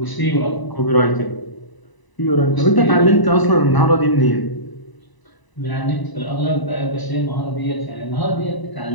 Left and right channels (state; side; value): late; right; 1.0 ms